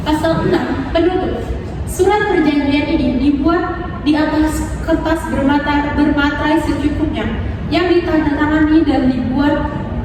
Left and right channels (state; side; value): identical; both; correlation 1.00